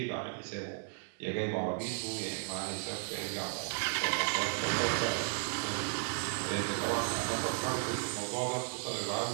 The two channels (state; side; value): silent; left; 55 dB below the other